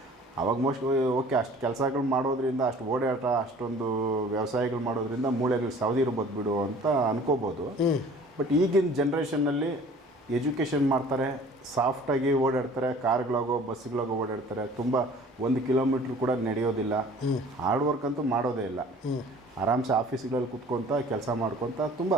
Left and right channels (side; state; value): both; normal; correlation 0.49